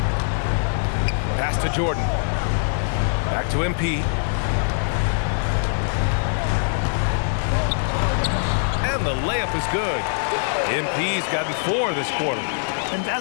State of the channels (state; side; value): silent; right; 61 dB below the other